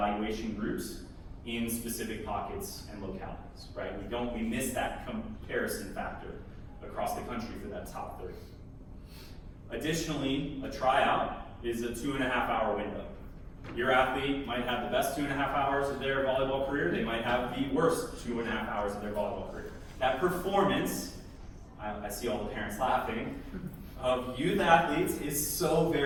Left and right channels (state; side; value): identical; both; correlation 1.00